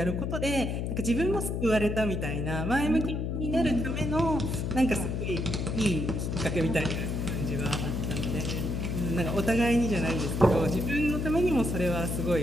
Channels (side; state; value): left; noise; hum, 1 dB below the sound